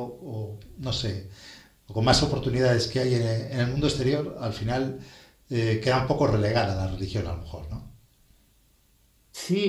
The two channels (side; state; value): both; identical; correlation 1.00